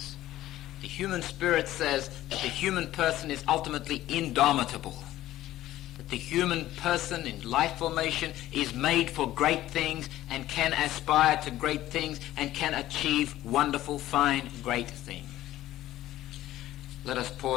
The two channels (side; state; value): right; quieter; 14.6 dB